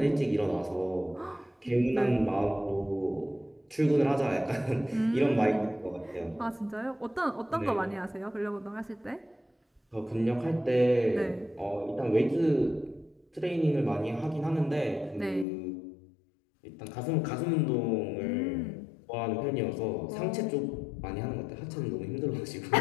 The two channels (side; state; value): right; drops out; at 15.5 s